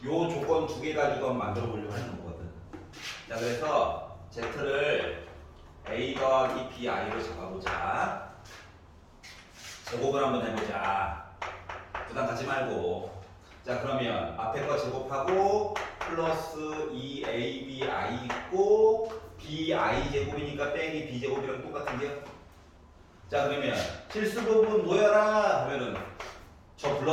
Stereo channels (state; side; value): identical; both; correlation 1.00